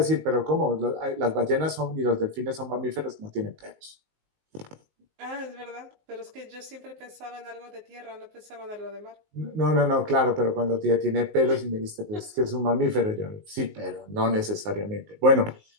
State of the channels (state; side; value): late; left; 19 ms